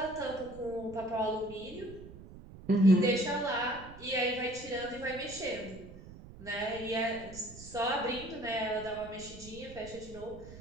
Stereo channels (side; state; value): right; noise; rumble, 16 dB below the sound